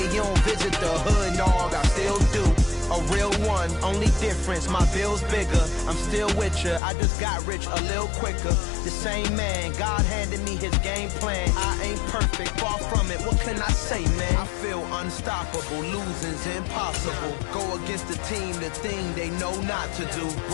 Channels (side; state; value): right; drops out; at 6.8 s